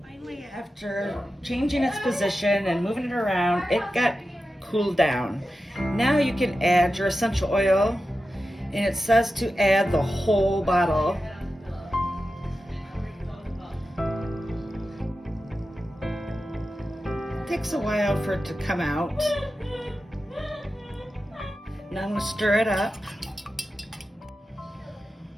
Finally, after changing its position and moving it around, it got cooled down. Now you can add your essential oil, and it says to add the whole bottle. It takes a while for it to come out. Now I'm going to stir it up.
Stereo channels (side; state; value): both; normal; correlation 0.92